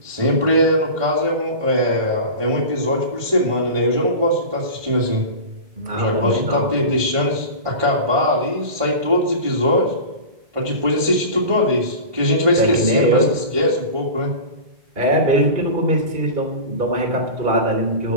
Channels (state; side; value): late; left; 1.5 ms